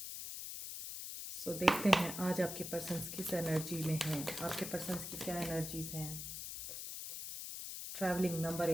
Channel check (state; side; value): noise; left; hiss, 7 dB below the sound